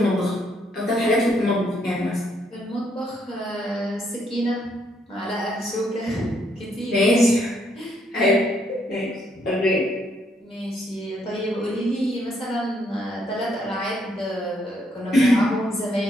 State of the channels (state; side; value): normal; both; correlation 0.72